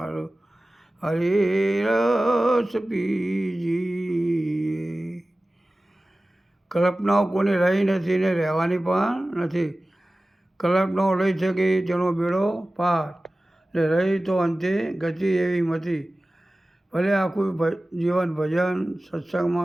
હરિરસ પીજીએ। કલ્પનાઓ કોની રહી નથી ને રહેવાની પણ નથી। કલ્પનાઓ લઈ શકી તેનો બેડો પાર ને રહી તો અંતે ગતિ એવી મતી। ભલે આખું જીવન ભજન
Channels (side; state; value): both; normal; correlation 0.97